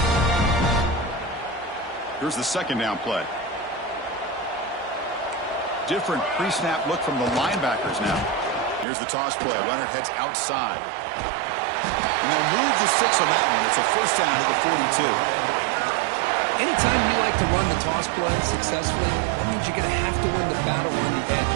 Here's the second down play. Different pre-snap look from the linebackers now. Here's the toss play. Runner heads outside. And they'll move the 6 on that one. It's a first down at the 42. Anytime you like to run the toss play successfully, that means you're going to have to win the battle on the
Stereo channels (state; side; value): drops out; left; at 8.8 s